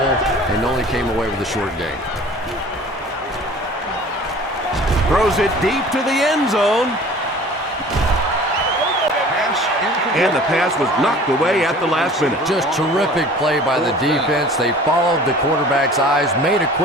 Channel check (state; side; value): normal; both; correlation 0.45